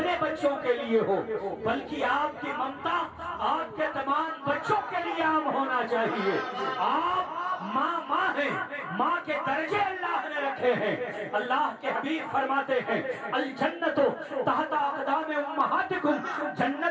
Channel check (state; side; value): identical; both; correlation 1.00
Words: بچوں کے لیے ہو، بلکہ آپ کی ممتا آپ کے تمام بچوں کے لیے عام ہونا چاہیے۔ آپ ماں ہیں، ماں کے درجے اللہ نے رکھے ہیں۔ اللہ کے حبیب فرماتے ہیں الجنت تحت اقدام امہاتکم،